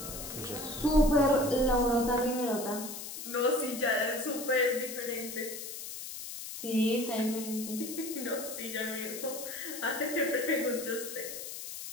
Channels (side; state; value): left; noise; hiss, 8 dB below the sound